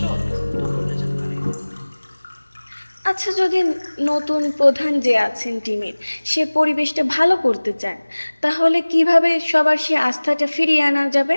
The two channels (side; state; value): both; inverted; correlation -1.00